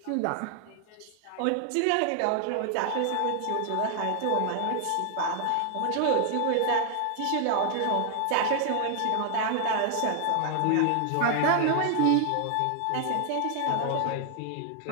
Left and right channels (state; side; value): different; both; correlation 0.00